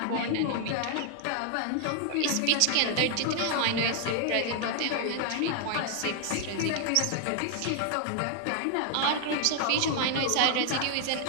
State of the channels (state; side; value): different; both; correlation 0.00